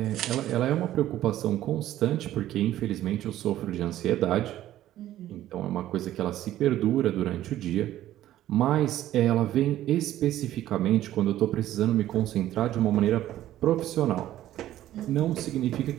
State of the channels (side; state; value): left; quieter; 13.4 dB